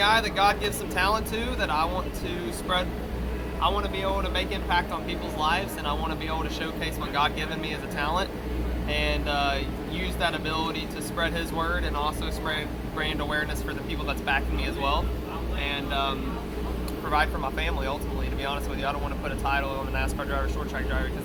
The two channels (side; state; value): both; identical; correlation 1.00